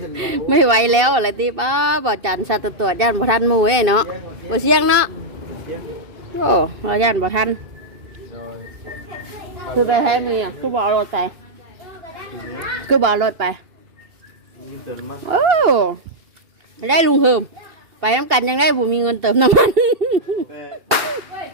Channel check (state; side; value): late; left; 2.7 ms